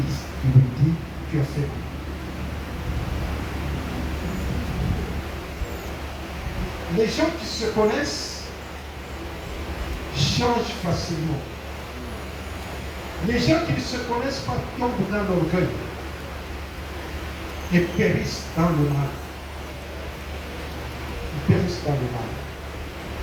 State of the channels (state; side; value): identical; both; correlation 1.00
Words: Tu lui dis, tu as fait le mal. Les gens qui se connaissent changent facilement. Les gens qui ne se connaissent pas tombent dans l'orgueil et périssent dans le mal. Ils périssent dans le mal.